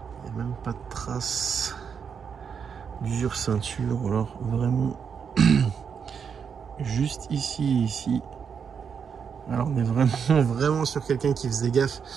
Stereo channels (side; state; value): left; quieter; 6.8 dB